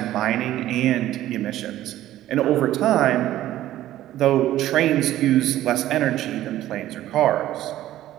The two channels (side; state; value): left; quieter; 13.8 dB